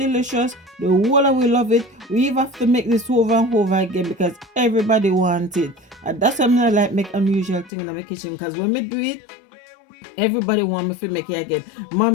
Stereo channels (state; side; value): drops out; right; at 7.7 s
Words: The whole of we love it. We even have to make this over and over again because everybody wants it. And that's why I like make unusual thing in my kitchen because when we do it, everybody want me to make it again.